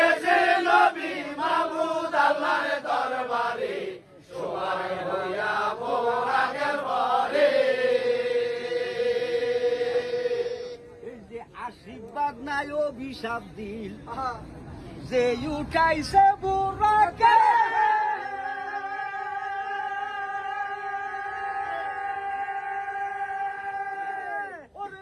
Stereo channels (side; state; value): both; identical; correlation 1.00